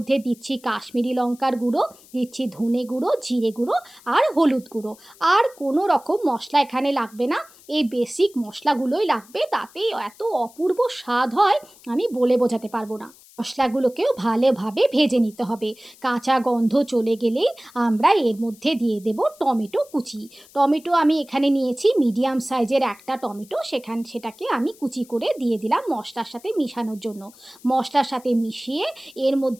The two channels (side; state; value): left; noise; hiss, 25 dB below the sound